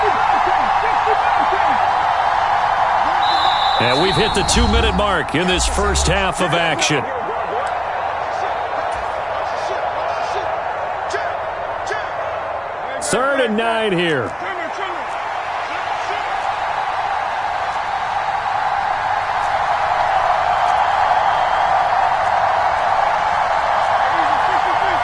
And we've hit the 2-minute mark in this first half of action. Third and 9 here.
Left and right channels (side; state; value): both; identical; correlation 1.00